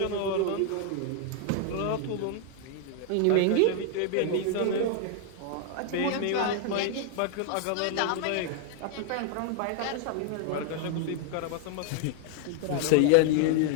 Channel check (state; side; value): different; both; correlation 0.00